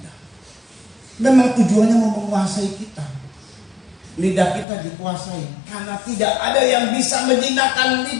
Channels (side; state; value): right; drops out; at 4.7 s